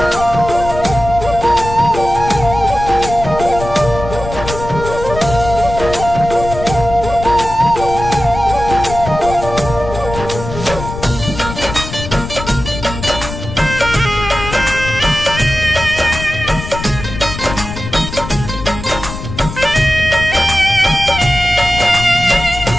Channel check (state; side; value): noise; left; rumble, 9 dB below the sound